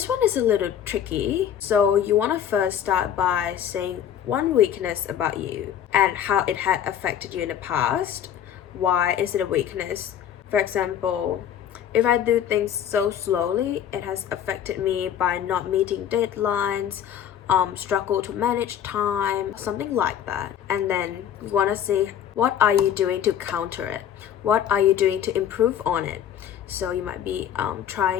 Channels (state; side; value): quieter; right; 9.7 dB